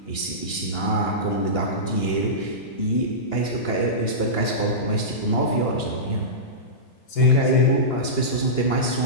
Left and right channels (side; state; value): right; late; 2.9 ms